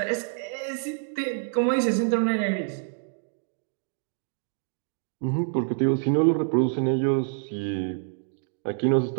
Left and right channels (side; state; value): left; silent; digital silence